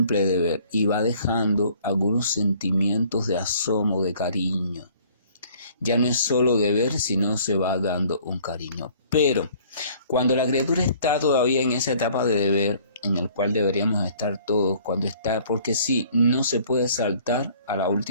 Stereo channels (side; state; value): both; inverted; correlation -0.56